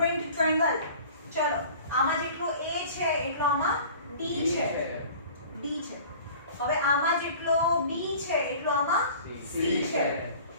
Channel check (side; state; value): both; inverted; correlation -0.44